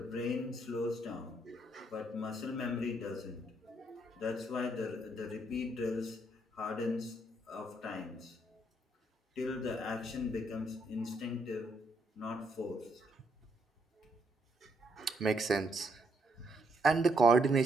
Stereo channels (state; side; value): normal; both; correlation 0.74